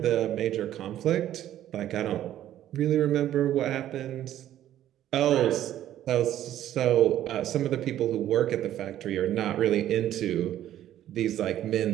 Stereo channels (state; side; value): quieter; left; 12.2 dB